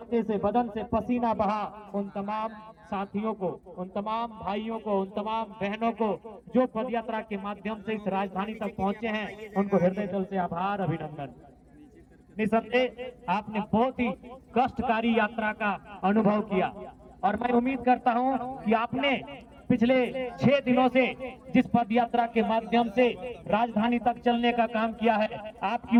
से, बदन से पसीना बहा, उन तमाम साथियों को, उन तमाम भाइयों को, उन तमाम बहनों को जो पदयात्रा के माध्यम से इस राजधानी तक पहुंचे हैं, उनको हृदय तल से आभार, अभिनंदन। निसंदेह आपने बहुत ही कष्टकारी यात्रा का अनुभव किया और मैं उम्मीद करता हूं कि आपने पिछले 6 दिनों से जिस पद यात्रा के माध्यम से राजधानी तक चलने का काम किया है, आपकी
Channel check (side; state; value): both; identical; correlation 1.00